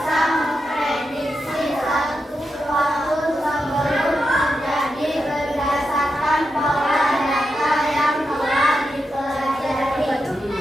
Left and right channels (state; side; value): normal; both; correlation 0.87